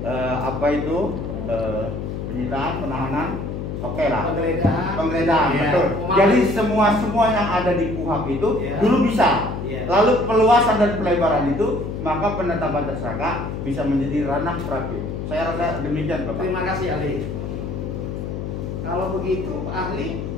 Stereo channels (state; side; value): noise; left; hum, 5 dB below the sound